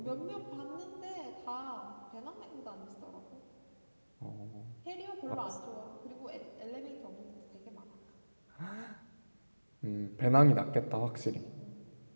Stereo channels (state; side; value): inverted; both; correlation -1.00